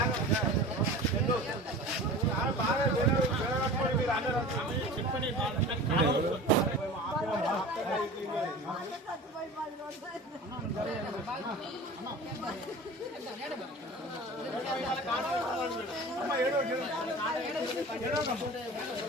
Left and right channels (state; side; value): normal; both; correlation 0.37